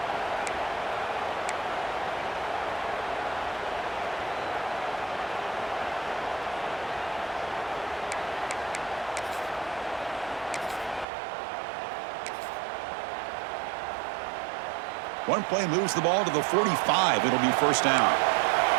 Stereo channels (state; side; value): drops out; left; at 11.1 s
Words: One play moves the ball to the 45. It'll be 1st down.